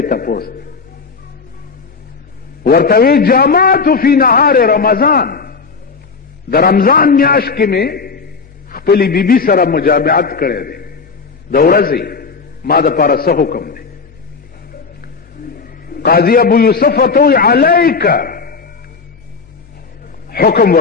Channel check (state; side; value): quieter; right; 4.9 dB